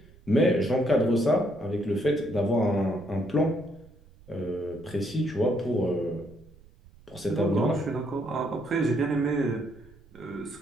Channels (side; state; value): right; noise; rumble, 25 dB below the sound